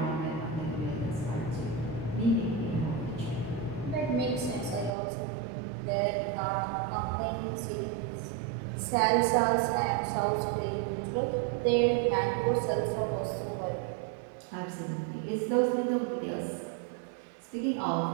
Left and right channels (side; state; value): left; drops out; at 5.0 s